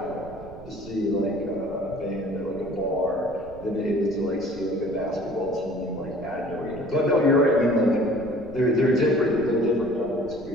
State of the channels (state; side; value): noise; right; rumble, 18 dB below the sound